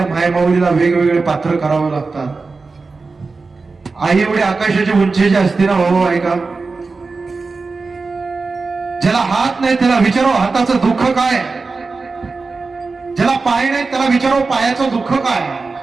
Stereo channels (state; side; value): quieter; left; 4.1 dB